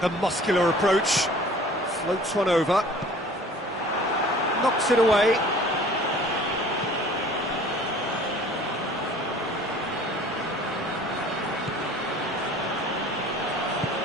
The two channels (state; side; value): normal; both; correlation 0.48